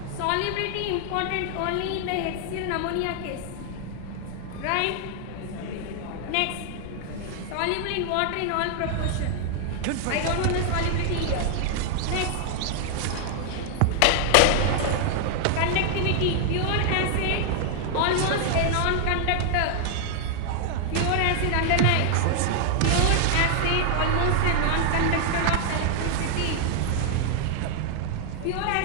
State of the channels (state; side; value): different; both; correlation 0.00